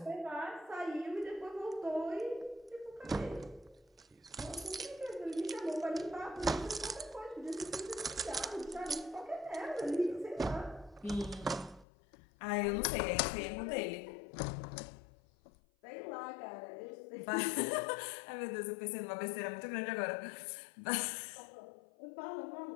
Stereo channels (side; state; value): right; drops out; at 11.9 s